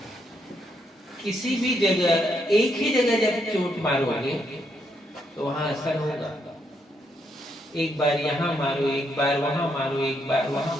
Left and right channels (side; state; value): both; normal; correlation 0.76